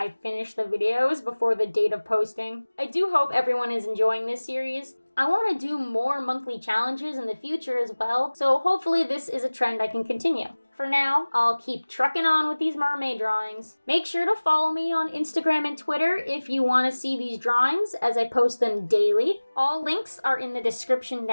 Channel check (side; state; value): both; inverted; correlation -1.00